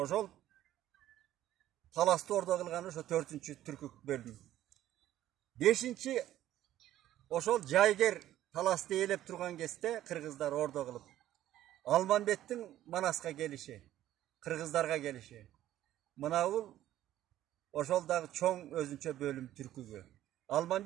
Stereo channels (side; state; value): left; quieter; 13.2 dB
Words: Talasты ordo kılgan oşo 4-cü türkük bölüm. 5-ci oşol Jayger Talasты elep turgan keste Kırgızlar ordo kılıp Almanbettin Manaska gelişi, Kırgızlarga gelişi. Mınavul oşol dagı çoğ özünçe bölüm türkügü.